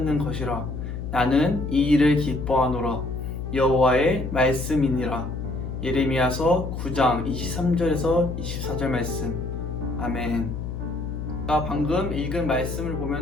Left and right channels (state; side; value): noise; left; hum, 6 dB below the sound